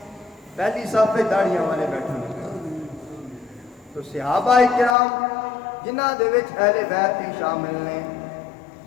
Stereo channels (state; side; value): drops out; right; at 5.0 s